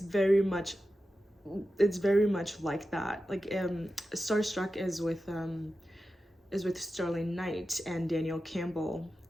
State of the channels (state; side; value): normal; both; correlation 0.92